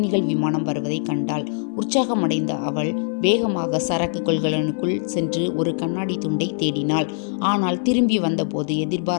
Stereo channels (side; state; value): right; silent; 58 dB below the other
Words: விமானம் வருவதை கண்டாள். உற்சாகமடைந்த அவள் வேகமாக சரக்கு கொள்கலனுக்குள் சென்று ஒரு கண்ணாடி துண்டை தேடினாள். ஆனால் திரும்பி வந்தபோது